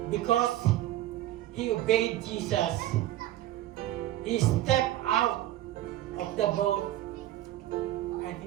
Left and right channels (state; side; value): quieter; left; 14.0 dB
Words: because he obeyed Jesus. He stepped out of the boat and